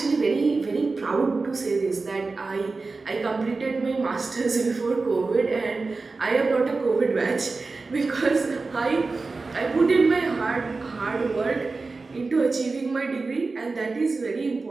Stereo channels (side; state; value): left; quieter; 3.9 dB